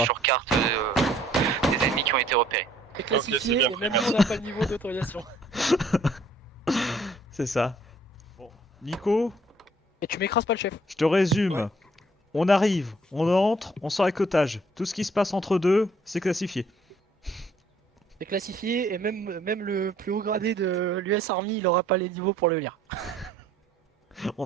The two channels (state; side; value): normal; both; correlation 0.61